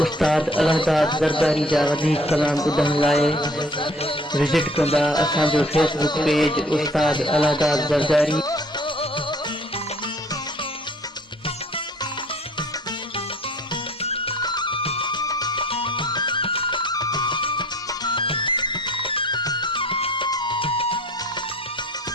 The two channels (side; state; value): both; normal; correlation 0.54